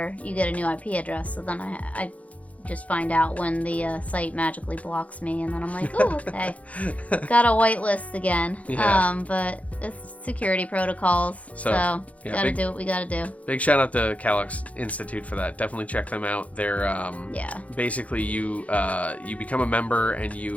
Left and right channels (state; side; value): late; right; 0.067 ms